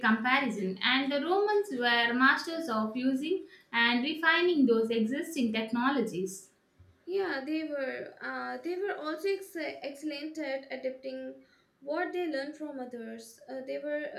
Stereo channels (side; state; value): both; identical; correlation 1.00